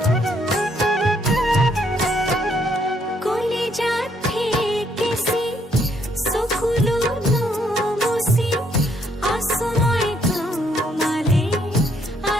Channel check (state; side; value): normal; both; correlation 0.70